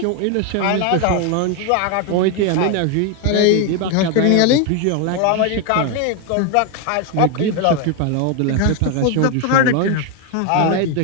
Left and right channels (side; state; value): both; different; correlation 0.01